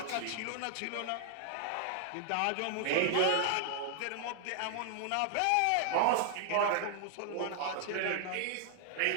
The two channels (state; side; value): different; both; correlation 0.00